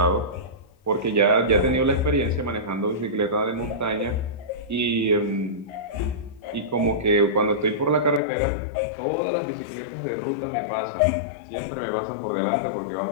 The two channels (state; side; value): drops out; right; at 8.2 s